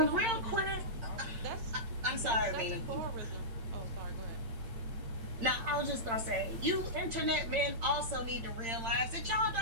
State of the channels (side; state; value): left; late; 8.8 ms